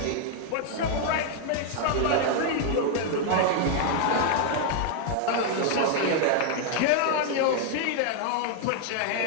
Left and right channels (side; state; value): both; different; correlation 0.00